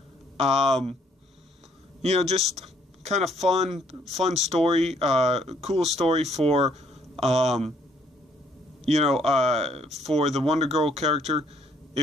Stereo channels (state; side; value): normal; both; correlation 0.66